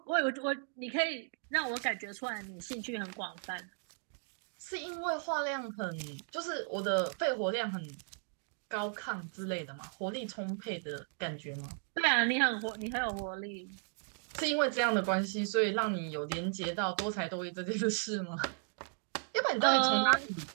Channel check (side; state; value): left; silent; 54 dB below the other